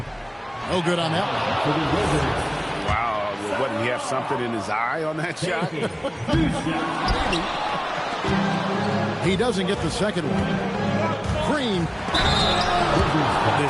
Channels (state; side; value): identical; both; correlation 1.00